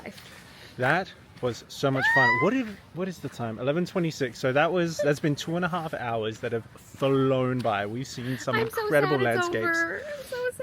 that was so much fun. What is the time? 11:26. So that's been 2.5 hours that have flown by. We've seen some incredible landscapes. I'm so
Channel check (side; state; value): both; identical; correlation 1.00